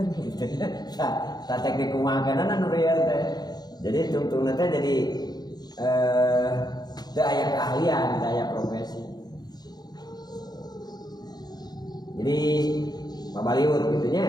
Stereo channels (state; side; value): late; right; 0.20 ms